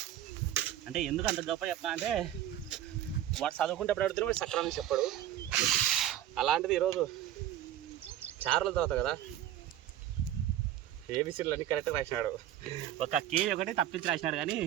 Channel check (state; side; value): quieter; left; 12.2 dB